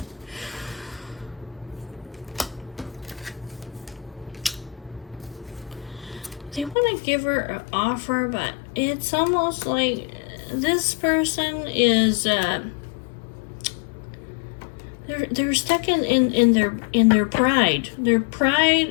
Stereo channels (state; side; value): drops out; right; at 6.8 s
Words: They want to give her an offer, but it's almost like this person is they're stuck in their pride. Their pride